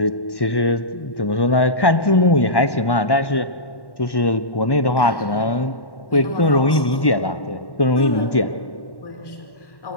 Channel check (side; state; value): right; late; 1.1 ms